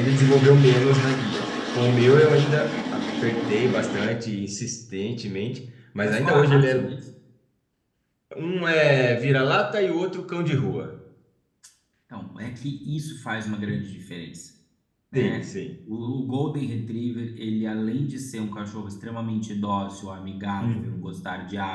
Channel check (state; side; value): identical; both; correlation 1.00